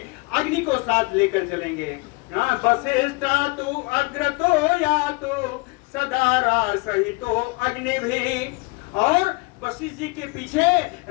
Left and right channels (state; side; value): quieter; right; 27.8 dB